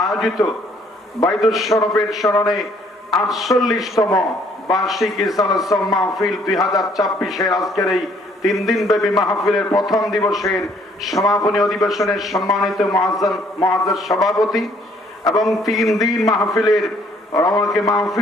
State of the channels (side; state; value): both; normal; correlation 0.63